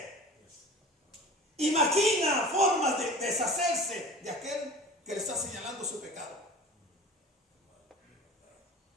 y maquina formas de deshacerse de aquel que le está señalando su pecado.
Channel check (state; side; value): normal; both; correlation 0.38